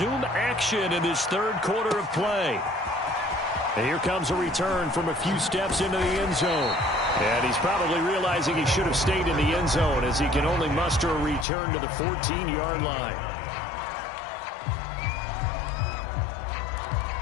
action in this third quarter of play. And here comes a return from a few steps into the end zone. And he's probably realizing he should have stayed in the end zone as he can only muster a return to the 14-yard line.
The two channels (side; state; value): right; drops out; at 11.5 s